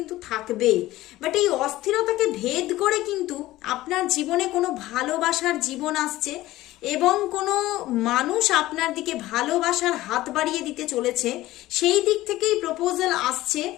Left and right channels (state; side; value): quieter; right; 16.6 dB